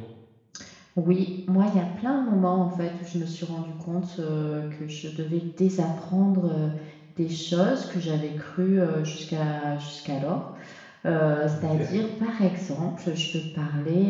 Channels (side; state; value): both; identical; correlation 1.00